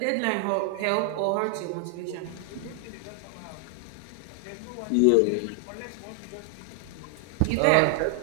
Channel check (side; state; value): both; different; correlation 0.00